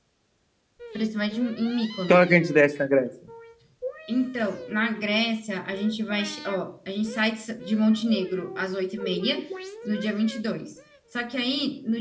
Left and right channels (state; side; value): identical; both; correlation 1.00